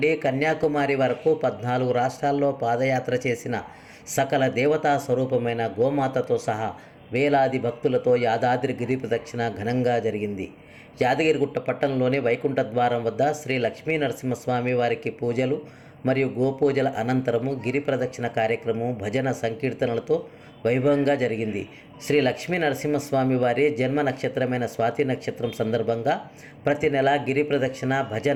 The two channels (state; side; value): identical; both; correlation 1.00